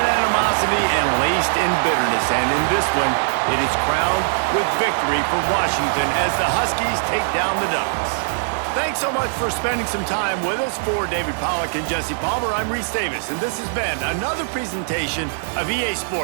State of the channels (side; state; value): left; silent; digital silence